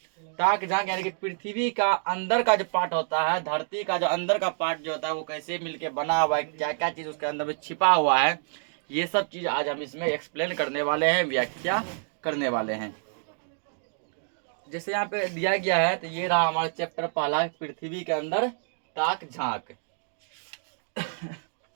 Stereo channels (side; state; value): left; silent; digital silence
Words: ताक झांक यानी कि पृथ्वी का अंदर का जो पार्ट होता है, धरती का जो अंदर का पार्ट जो होता है वो कैसे मिलके बना हुआ है, क्या क्या चीज उसके अंदर में छिपा हुआ है, ये सब चीज आज हम इसमें एक्सप्लेन करने वाले हैं, व्याख्या करने वाले हैं। जैसे यहाँ पे दिया गया है तो ये रहा हमारा चैप्टर पहला, पृथ्वी के अंदर ताक झांक।